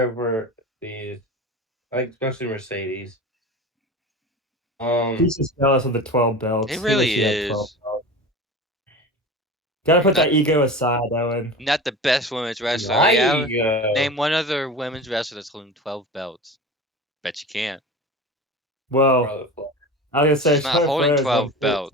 for these, like especially Mercedes. Um, He's just jealous of the 12 It belts. He wish really he had 12 is. belts. Gotta put Not that ego aside, Owen. not the best women's wrestler. my Yeah. ego. Name one other women's wrestler that's holding 12 belts. Bet you can't. Well, Charlotte Flair. I was gonna say She's not Charlotte holding Flair is like 12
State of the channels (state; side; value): normal; both; correlation 0.32